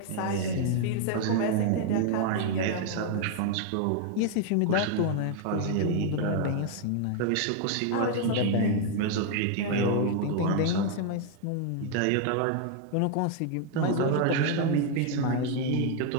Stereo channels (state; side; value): different; both; correlation 0.00